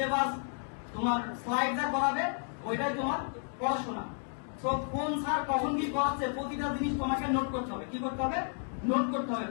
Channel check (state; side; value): silent; right; 56 dB below the other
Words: তোমার স্লাইড যা করাবে ওইটাই তোমার পড়াশোনা। তো কোন স্যার কখন কি করাচ্ছে প্রতিটা জিনিস তোমাকে নোট করতে হবে। কি করতে হবে? নোট করতে হবে